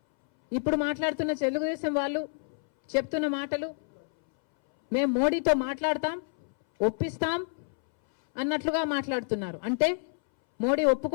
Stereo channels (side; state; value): right; silent; 59 dB below the other